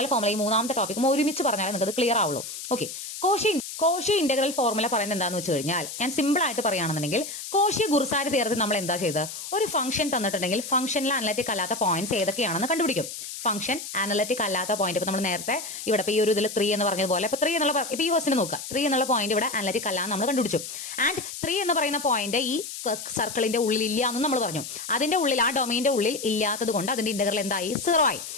ഫോർമുല ഈ 3ാമത്തെ ടോപ്പിക്കും ഒരുമിച്ച് പറഞ്ഞാൽ നിങ്ങൾക്ക് അത് ക്ലിയർ ആവുള്ളൂ. ഓക്കെ, കോഷി ഇന്റഗ്രൽ ഫോർമുല പറയുന്നത് എന്താണെന്ന് വെച്ച് കഴിഞ്ഞാൽ, ഞാൻ സിമ്പിൾ ആയിട്ട് പറയുകയാണെന്നുണ്ടെങ്കിൽ, കോഷി-ഗുർസാൽ തിയറത്തിൽ നമ്മൾ എന്താ ചെയ്തത്, ഒരു ഫംഗ്ഷൻ തന്നിട്ടുണ്ടെങ്കിൽ ഫംഗ്ഷനിൽ അനലറ്റിക് അല്ലാത്ത പോയിന്റ്സ് ഏതൊക്കെയാണെന്ന് കണ്ടുപിടിക്കും. ഫംഗ്ഷൻ അനലറ്റിക് അല്ലാത്ത പോയിന്റ്, ഇപ്പൊ നമ്മൾ നേരത്തെ ഇവിടെ ഈ ഒരു ഇതിൽ 3 എന്ന് പറഞ്ഞതുപോലെ, ഇപ്പൊ 3 എന്നുള്ള ഇപ്പൊ ഈ ക്വസ്റ്റിന് നോക്കുക, 3 എന്നുള്ള പോയിന്റ് ഇവിടെ അനലറ്റിക് അല്ല നമ്മൾ കണ്ടുപിടിച്ചു. ആൻഡ് 3 എന്ന് പറയുന്ന പോയിന്റ് ഈ സർക്കിളിന്റെ ഉള്ളിൽ ഇല്ല എന്നും നമ്മൾ പറഞ്ഞു. അതിന്റെ ഉള്ളിൽ, ആ ഡൊമൈന്റെ ഉള്ളിൽ ഇല്ലാത്തത് കൊണ്ട് അതിന്റെ ഇന്റഗ്രൽ എന്തായി, 0 ആയി.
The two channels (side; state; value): left; noise; hiss, 9 dB below the sound